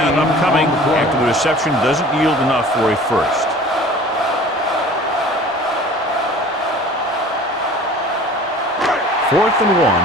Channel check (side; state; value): both; normal; correlation 0.45